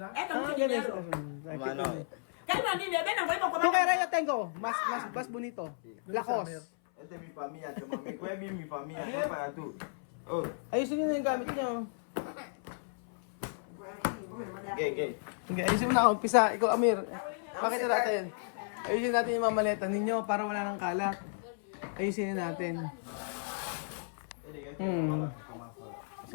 es mucho ganyan. dinero. Cállate, niño, ven, ven, ven, Tu kay Raya tengo. Mas bonito. Lakos. Este es mi familia, mami. Kuya Bill, mi familia. No para tú. Oh, Ayusin nyo na yung gamit nyo. gay. Okay, ayusin mo na. Umpisa. Ikaw, Amir. Pakita natin. Ayusin natin yung mga maleta ninyo para wala nang kalat. Ayusin na natin.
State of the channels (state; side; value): silent; right; 55 dB below the other